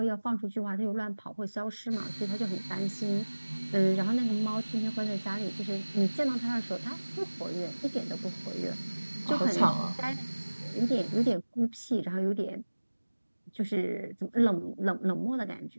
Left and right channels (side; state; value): both; inverted; correlation -1.00